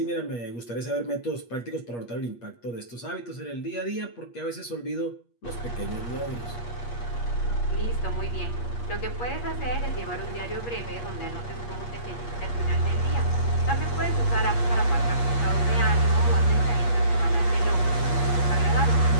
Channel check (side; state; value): right; late; 8.4 ms